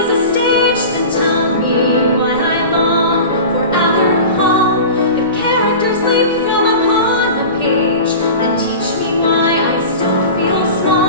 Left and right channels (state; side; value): inverted; both; correlation -0.34